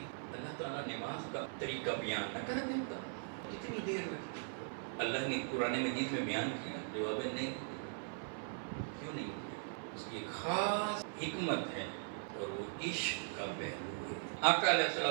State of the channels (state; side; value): silent; left; 51 dB below the other